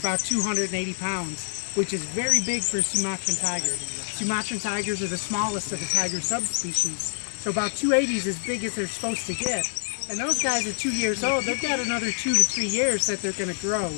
280 pounds, which is very big for Sumatran tiger. Sumatran tigers are the smallest of the tiger subspecies. So about 280 is as big as they're supposed to get. And those guys are 2 years old. They've got another 2 to 3 years that they're going to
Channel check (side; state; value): right; silent; 59 dB below the other